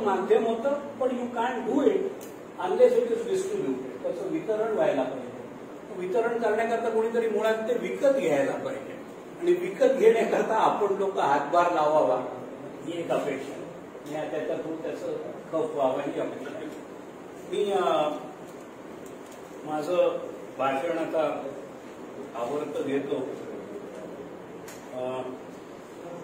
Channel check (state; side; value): identical; both; correlation 1.00